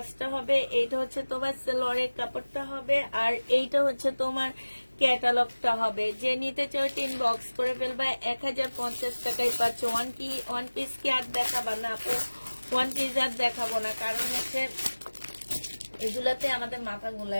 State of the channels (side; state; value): both; inverted; correlation -1.00